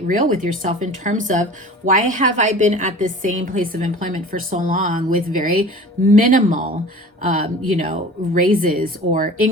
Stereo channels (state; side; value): normal; both; correlation 0.41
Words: real with yourself in terms of, why have I been at this same place of employment for so long with very minimal you know, raises or